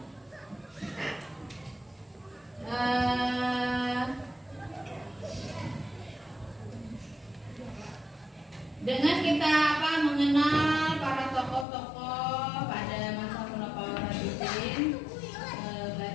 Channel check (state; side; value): drops out; right; at 11.7 s